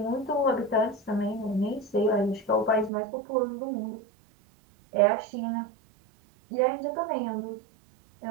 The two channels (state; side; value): drops out; left; at 2.9 s